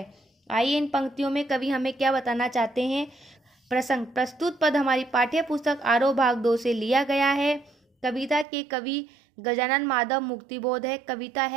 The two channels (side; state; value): left; drops out; at 8.5 s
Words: आइए इन पंक्तियों में कवि हमें क्या बताना चाहते हैं। प्रसंग। प्रस्तुत पद हमारी पाठ्य पुस्तक आरोह भाग 2 से लिया गया है। कविता के कवि गजानन माधव मुक्तिबोध है, कविता